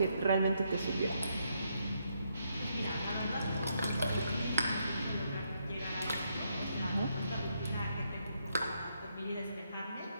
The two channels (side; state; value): both; inverted; correlation -0.77